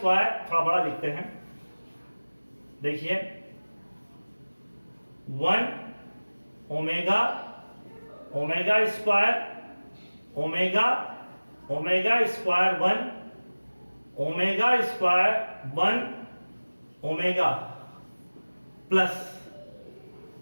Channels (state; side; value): inverted; both; correlation -1.00